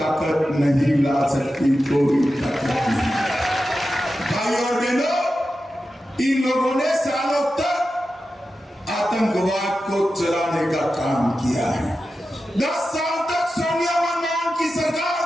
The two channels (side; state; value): both; normal; correlation 0.92